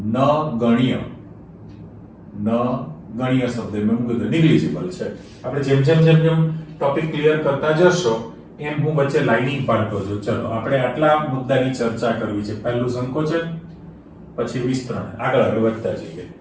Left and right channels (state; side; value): identical; both; correlation 1.00